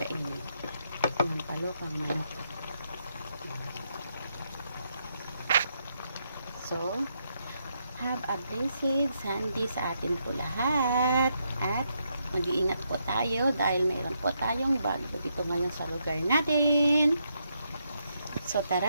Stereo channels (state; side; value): inverted; both; correlation -0.79